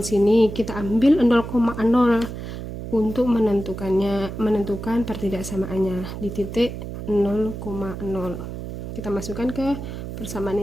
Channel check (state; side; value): noise; right; hum, 8 dB below the sound